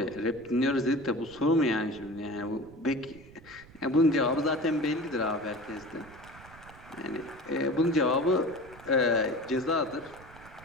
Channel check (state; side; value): noise; right; rumble, 21 dB below the sound